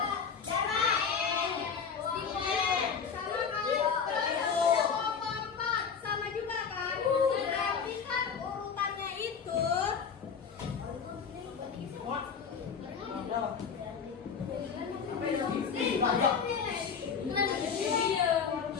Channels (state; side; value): quieter; right; 6.4 dB